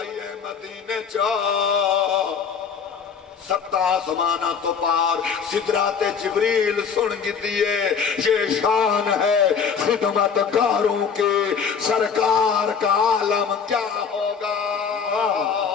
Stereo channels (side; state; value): right; quieter; 6.4 dB